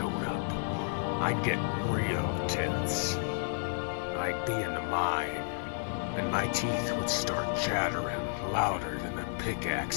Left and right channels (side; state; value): right; silent; 57 dB below the other